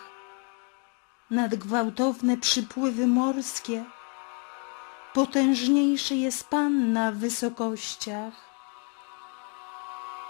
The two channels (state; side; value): quieter; right; 37.8 dB